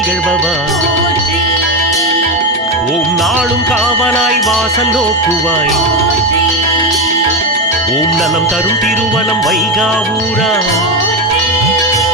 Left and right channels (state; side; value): normal; both; correlation 0.12